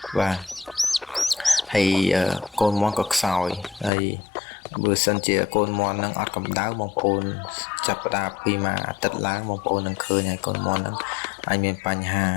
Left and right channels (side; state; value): right; drops out; at 3.9 s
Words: បាទហើយកូនមន់ក៏ខ្សោយហើយបើសិនជាកូនមន់នឹងអត់កម្ដៅបងប្អូនចាប់ផ្ដើមពីមួយអាទិត្យឡើងបងប្អូននឹងឃើញហើយកូនមន់នឹងអាចមានបញ្ហា